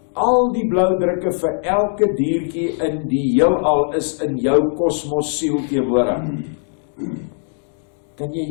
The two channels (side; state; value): right; silent; digital silence